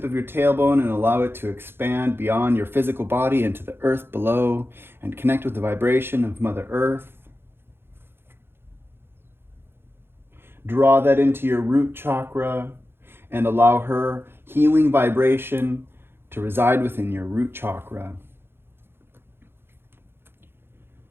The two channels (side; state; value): left; late; 0.11 ms